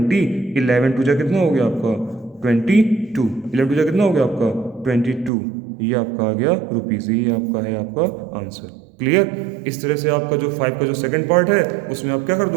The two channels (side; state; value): left; drops out; at 5.3 s